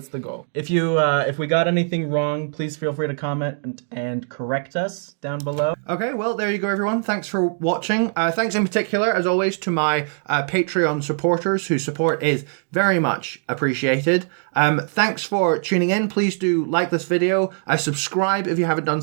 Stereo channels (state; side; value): silent; left; digital silence